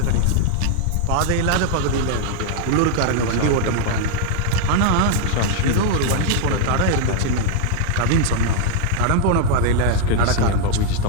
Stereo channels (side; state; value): both; different; correlation 0.00